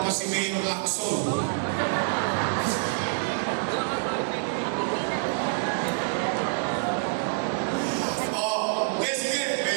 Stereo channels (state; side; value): silent; left; 60 dB below the other